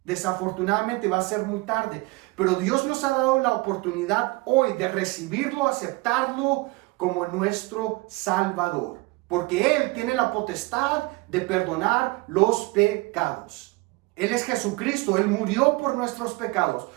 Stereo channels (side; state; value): left; quieter; 23.3 dB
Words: Desafortunadamente va a ser muy tarde, pero Dios nos ha dado la oportunidad hoy de recibirlo, aceptarlo como nuestro Salvador, porque Él tiene la potestad de perdonar los pecados. Él es Jesucristo, Él murió por nuestros pecados.